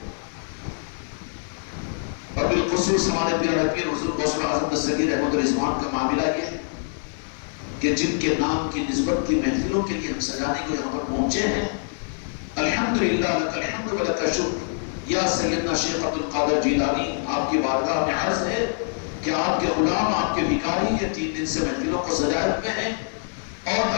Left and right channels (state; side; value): silent; right; digital silence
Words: اور بالخصوص ہمارے پیارے پیر حضور غوث اعظم دستگیر احمد رضوان کا معاملہ یہ کہ جن کے نام کی نسبت کی محفلوں کے لیے ہم سجانے کو یہاں پر پہنچے ہیں، الحمدللہ لک الحمد و لک الشکر، یا سیدنا شیخ عبد القادر جیلانی، آپ کی بارگاہ میں عرض ہے کہ آپ کے غلام، آپ کے بھکاری یہ 3 دن سے محفلوں کو سجائے ہوئے ہیں، اور